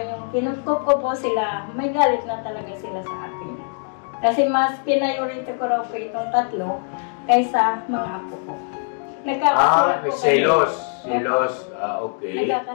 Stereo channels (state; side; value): silent; right; 56 dB below the other